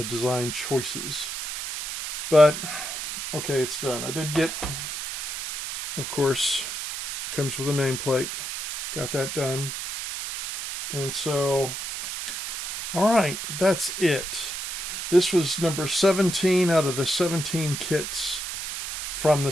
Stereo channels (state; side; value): noise; right; hiss, 6 dB below the sound